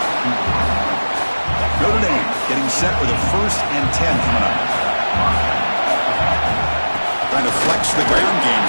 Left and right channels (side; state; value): both; inverted; correlation -1.00